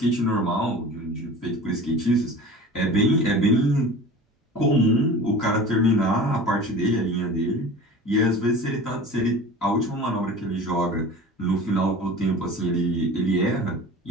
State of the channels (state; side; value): normal; both; correlation 0.38